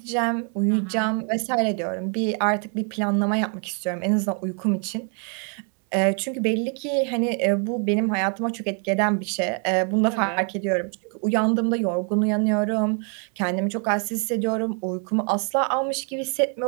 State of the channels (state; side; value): quieter; left; 39.6 dB